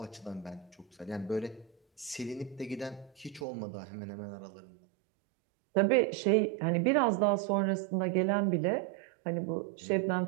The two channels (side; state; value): left; drops out; at 3.5 s